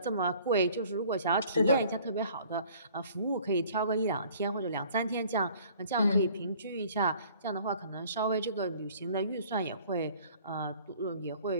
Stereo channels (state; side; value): inverted; both; correlation -0.53